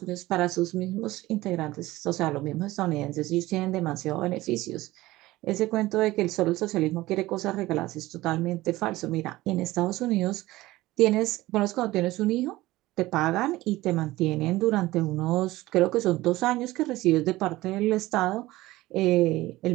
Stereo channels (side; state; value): left; quieter; 18.0 dB